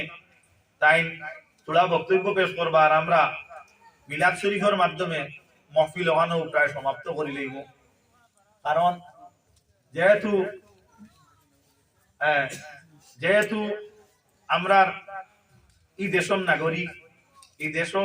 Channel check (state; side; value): identical; both; correlation 1.00